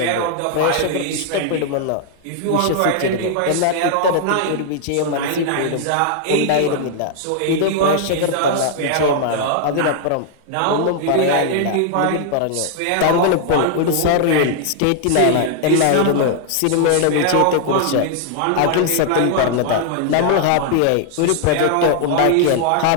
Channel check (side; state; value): both; different; correlation 0.00